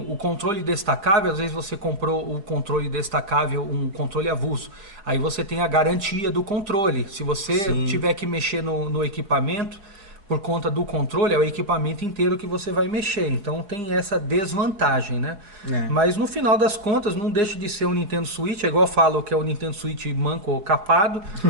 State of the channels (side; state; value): left; late; 4.9 ms